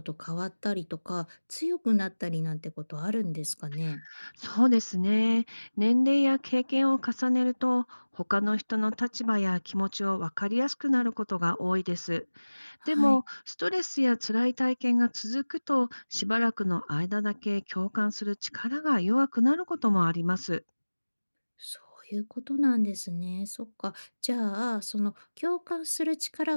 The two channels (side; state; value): both; inverted; correlation -1.00